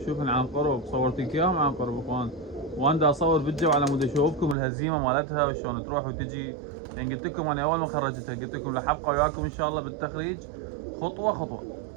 عن قرب. صورتك اياهم عن قرب اخوان وانا دا اصور بالجو على مود اشوفكم الهزيمة مالتها وشلون تروح وتجي. يعني قلت لكم انا اول ما خرجتها قلت لكم راح ابقى وياكم ان شاء الله بالتخريج خطوة خطوة.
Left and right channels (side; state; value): left; drops out; at 4.5 s